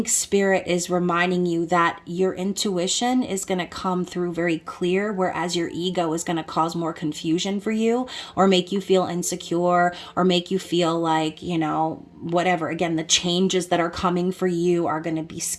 Spirit is reminding you that your intuition is going to come through very clear, whereas your ego is going to cause more confusion for you, or make you feel insecure, or make you feel like, you know, whatever. Again, the changes that are coming for you are going to be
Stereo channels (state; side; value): identical; both; correlation 1.00